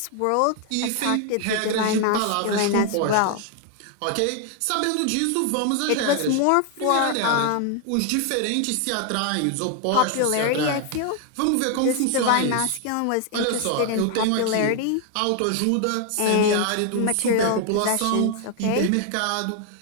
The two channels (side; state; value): both; different; correlation 0.00